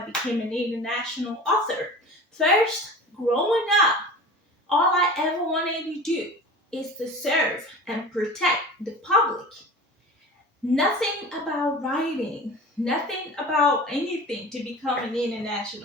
became an international author. First, growing up, all I ever wanted to do is to serve and protect the public. Nothing about writing, nothing about anything to become an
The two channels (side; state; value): both; normal; correlation 0.37